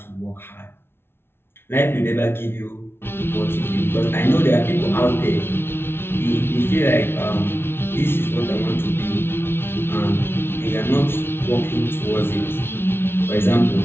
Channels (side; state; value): right; late; 0.11 ms